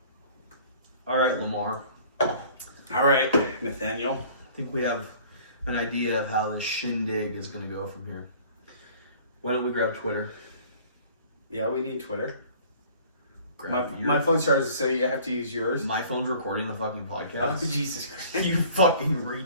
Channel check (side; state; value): both; inverted; correlation -0.51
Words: All right, Lamar. All right, Nathaniel. I think we have an idea of how this shindig is going to go from here. Why don't we grab Twitter? Yeah, we need Twitter. Grab My phone charges, so you have to use yours. My phone's recording the fucking podcast. Oh, Jesus Christ. You fucking